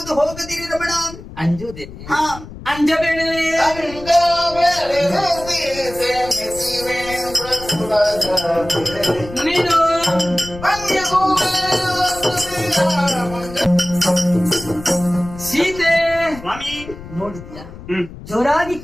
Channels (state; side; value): noise; left; rumble, 15 dB below the sound